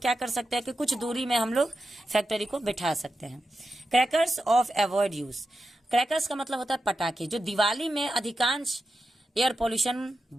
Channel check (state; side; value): normal; both; correlation 0.90